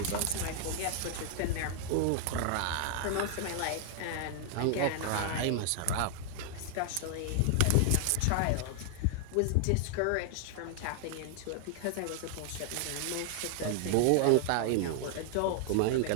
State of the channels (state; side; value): different; both; correlation 0.00